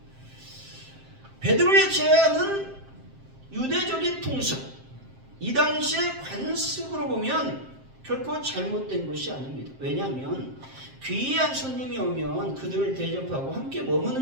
베드로의 제안은 유대적인 통습, 이 당시의 관습으로 보면 결코 잘못된 것이 아닙니다. 왜냐하면 귀한 손님이 오면 그들을 대접하고 함께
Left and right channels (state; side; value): late; left; 7.6 ms